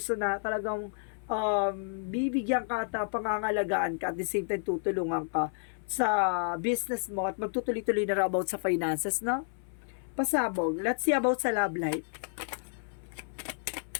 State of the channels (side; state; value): right; silent; 57 dB below the other